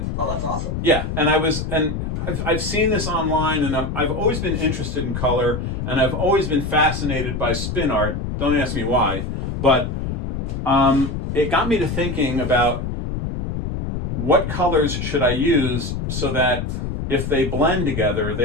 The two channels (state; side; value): noise; left; rumble, 3 dB below the sound